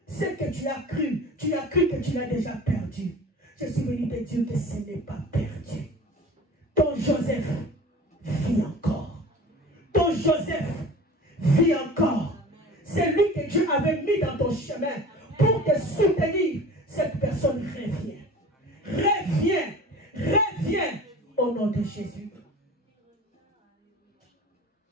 Ce que tu as cru que tu l'as déjà perdu. Je suis venu te dire que ce n'est pas perdu. Ton Joseph vit encore. Ton Joseph vit encore. C'est lui que Dieu avait mis dans ton chemin pour te soutenir. Cette personne revient. Reviens. Reviens au nom de Jésus.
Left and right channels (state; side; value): normal; both; correlation 0.40